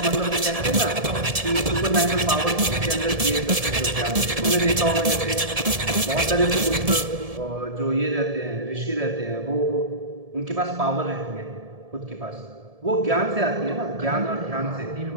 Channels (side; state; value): left; late; 1.7 ms